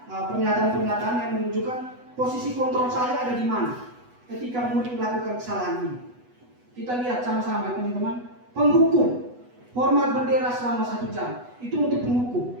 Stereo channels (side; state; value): left; late; 8.1 ms